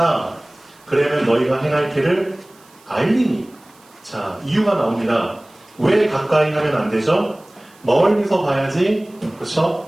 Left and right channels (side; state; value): right; noise; hiss, 29 dB below the sound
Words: 그러면 너희가 행할 길을 알리니. 자, 이유가 나옵니다. 왜 가까이 하면 안 되죠? 멀리서 봐야지.